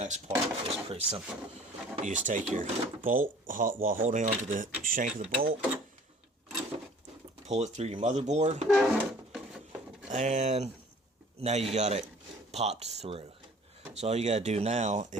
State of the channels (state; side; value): normal; both; correlation 0.50